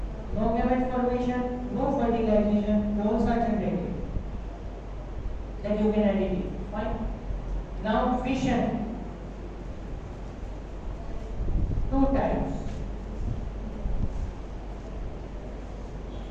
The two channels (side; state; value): both; identical; correlation 1.00